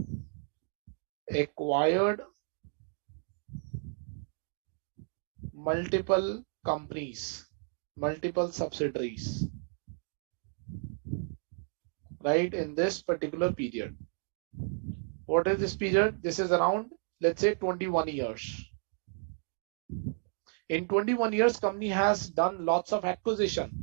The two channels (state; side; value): silent; left; 56 dB below the other